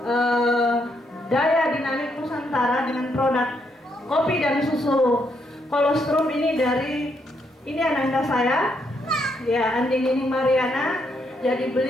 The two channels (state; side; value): normal; both; correlation 0.76